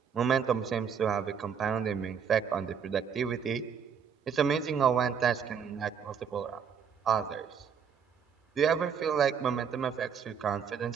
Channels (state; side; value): quieter; left; 7.1 dB